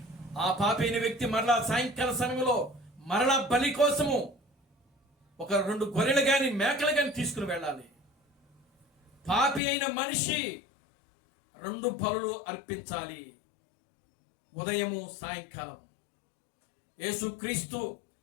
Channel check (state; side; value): drops out; right; at 9.6 s